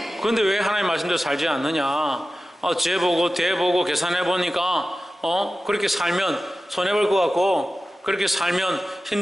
그런데 왜 하나님 말씀대로 살지 않느냐? 재보고 대보고 계산해보니까 그렇게 살면 손해볼 것 같고 그렇게 살면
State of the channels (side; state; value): both; normal; correlation 0.94